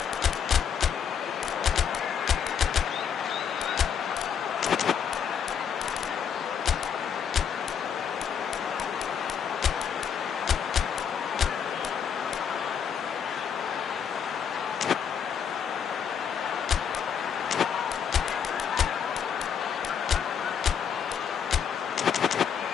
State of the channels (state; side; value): quieter; right; 7.6 dB